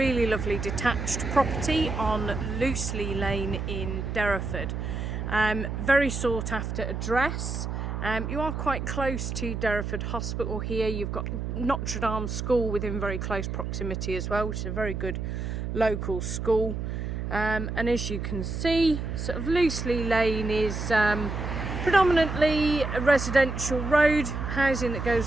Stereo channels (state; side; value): noise; right; hum, 4 dB below the sound